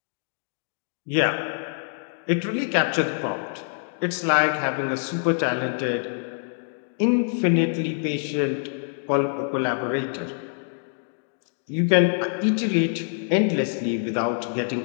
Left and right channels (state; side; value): silent; right; digital silence